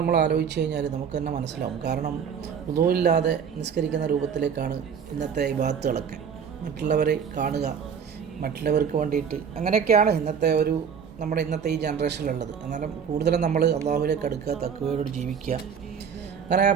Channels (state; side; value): quieter; left; 7.1 dB